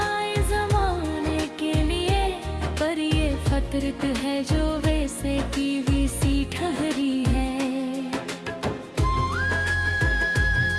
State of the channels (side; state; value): both; identical; correlation 1.00